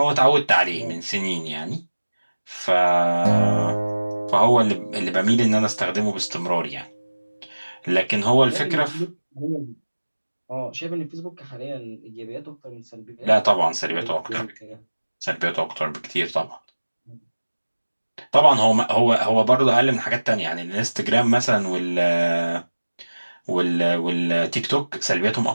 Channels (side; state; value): both; inverted; correlation -1.00